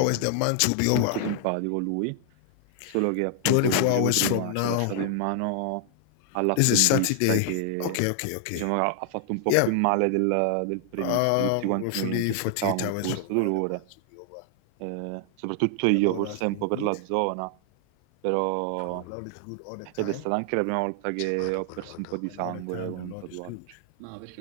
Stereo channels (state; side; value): different; both; correlation 0.00